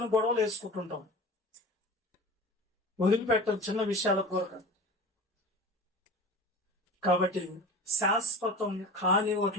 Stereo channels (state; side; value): normal; both; correlation 0.35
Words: గొడవలు వేసుకుంటుంటాం, వదిలిపెట్టం చిన్న విషయాల కొరకు. కాబట్టి శాశ్వతం కాని